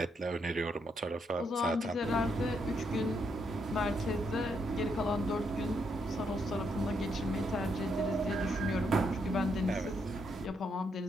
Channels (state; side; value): normal; both; correlation 0.77